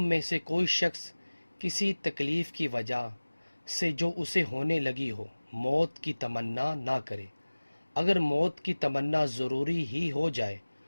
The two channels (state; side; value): inverted; both; correlation -1.00